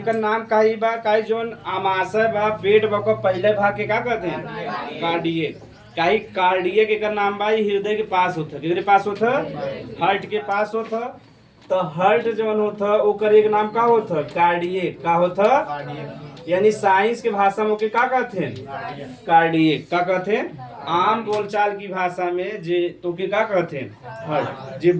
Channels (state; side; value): identical; both; correlation 1.00